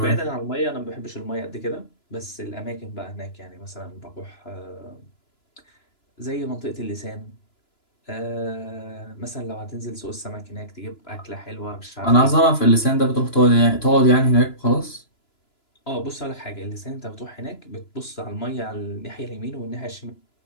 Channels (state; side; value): late; right; 2.9 ms